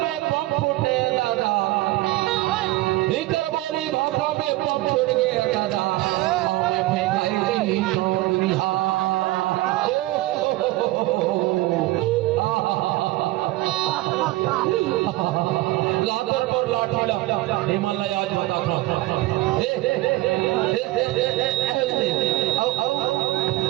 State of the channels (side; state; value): left; quieter; 18.2 dB